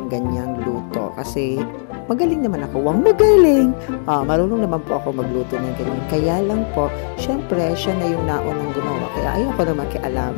ganyang luto. Kasi, magaling naman ako. Wang magaling! Marunong naman po ako magluto ng ganyan. Kaya lang po, syempre, siya na yung naunang gumawa. Kaya ayoko na makialam.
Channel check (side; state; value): right; silent; digital silence